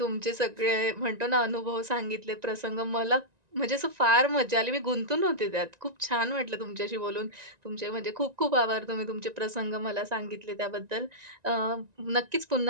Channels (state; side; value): late; left; 1.9 ms